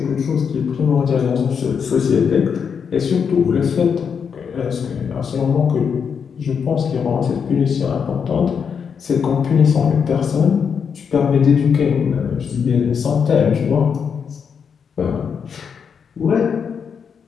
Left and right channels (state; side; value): quieter; right; 6.7 dB